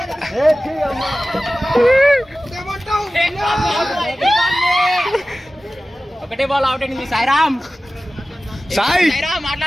ఒకటే బాల్ అవుట్ అయింది. సాయిరామ్ సాయిరామ్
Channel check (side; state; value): both; normal; correlation 0.96